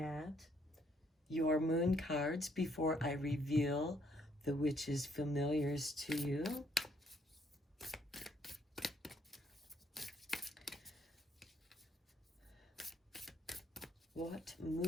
your moon cards before I reveal the witch's familiars to you. What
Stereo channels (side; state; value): both; normal; correlation 0.69